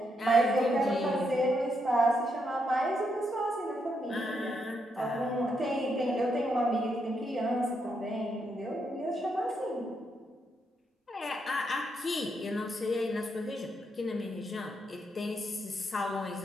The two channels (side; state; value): both; normal; correlation 0.79